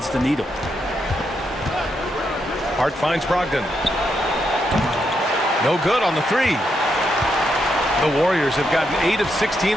the needle. Hart finds Brogdon. No good on the 3. The Warriors have gotten 8 of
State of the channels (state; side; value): normal; both; correlation 0.81